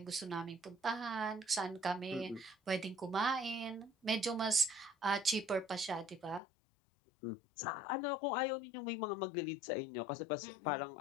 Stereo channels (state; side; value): drops out; right; at 6.4 s